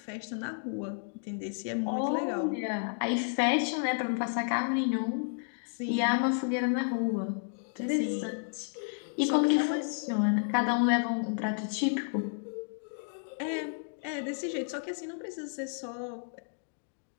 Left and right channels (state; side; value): silent; right; digital silence